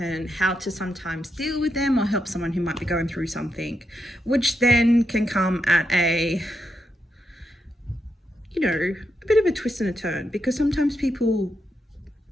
how to sometimes deal with them or help someone who might be going through something, which then can come at a bit of a twist and a turn, because sometimes people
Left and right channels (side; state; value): both; normal; correlation 0.83